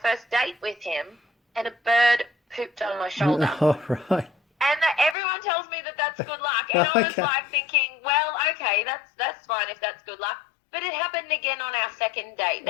first date with him, and a bird pooped on my shoulder. Oh, right. And everyone tells me that that's good luck. And I was like thinking, well, okay, that's fine if that's good luck. But it happened again on our second date.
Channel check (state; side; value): drops out; right; at 5.2 s